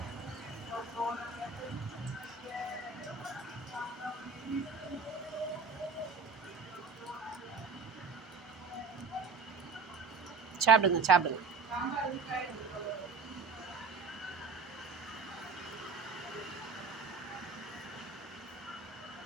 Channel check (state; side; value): quieter; left; 4.7 dB